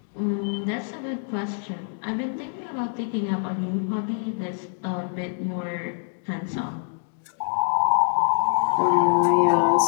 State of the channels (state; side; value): silent; right; digital silence